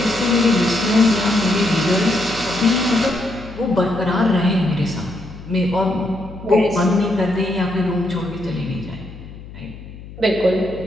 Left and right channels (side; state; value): left; noise; hum, 15 dB below the sound